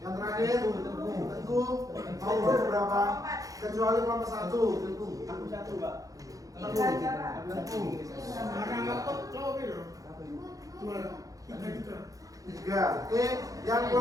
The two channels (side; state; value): left; late; 0.17 ms